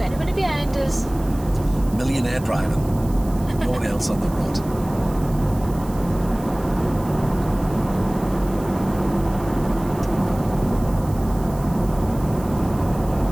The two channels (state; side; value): noise; right; hiss, 20 dB below the sound